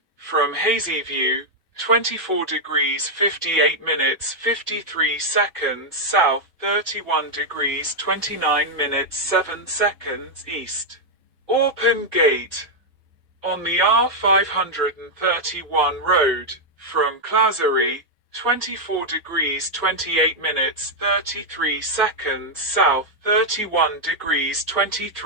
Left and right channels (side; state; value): both; normal; correlation -0.01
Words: from Hazyview, 24 degrees 58 minutes 53 seconds south, 31 degrees 29 minutes 7 seconds east. Orpen Gate, on the R531 road, from Clazery, 24 degrees 28 minutes 33 seconds south, 31 degrees